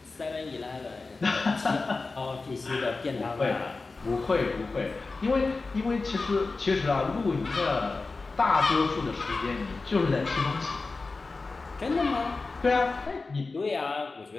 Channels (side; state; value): right; quieter; 3.8 dB